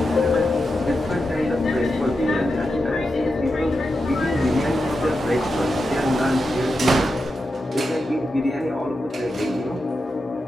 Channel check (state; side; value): normal; both; correlation 0.89